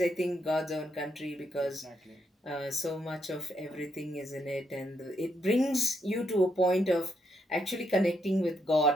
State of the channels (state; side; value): normal; both; correlation 0.77